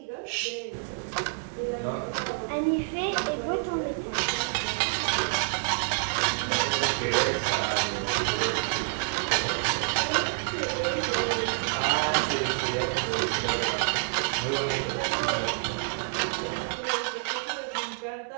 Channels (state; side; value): silent; left; digital silence